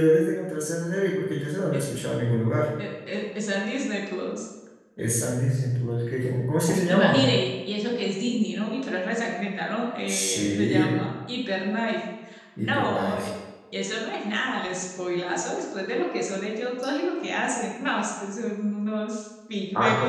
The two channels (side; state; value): both; identical; correlation 1.00